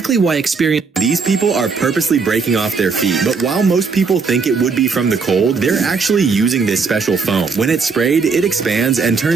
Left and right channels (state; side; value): quieter; left; 4.9 dB